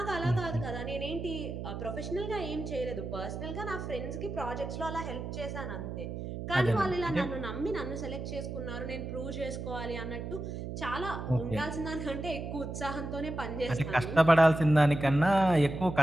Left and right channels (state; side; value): noise; right; hum, 6 dB below the sound